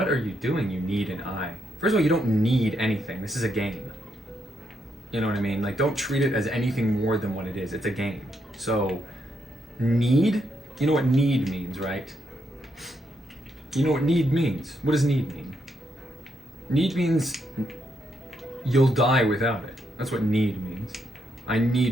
are you doing? You need an eye. First of all, you don't need anything. This is a game. You know what I mean? Like, don't treat it as anything more than what it is. It's a game. So, need? You know what need means, right? You know what need means? What does need mean? Need means you'll die without it. That's what need means. I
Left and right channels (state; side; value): normal; both; correlation 0.78